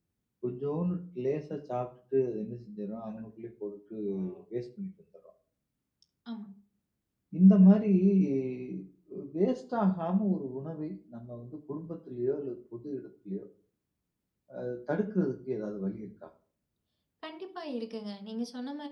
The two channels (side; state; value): both; identical; correlation 1.00